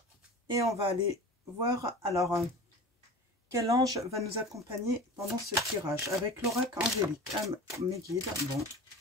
Et on va aller voir, alors, quel ange va nous accompagner pendant ce tirage avec l'oracle angélique. Mes guides, bon.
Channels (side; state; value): both; normal; correlation 0.36